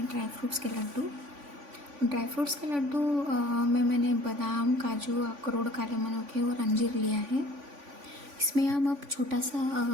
ड्राई फ्रूट्स के लड्डू। में मैंने बादाम, काजू, अखरोट, काले मनुके और अंजीर लिया है। इसमें हम अब छोटा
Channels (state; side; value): late; left; 3.5 ms